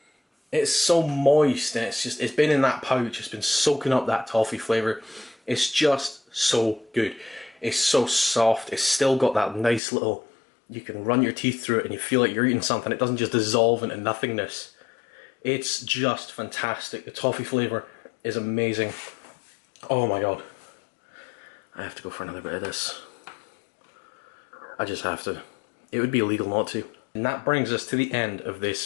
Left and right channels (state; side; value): drops out; right; at 9.8 s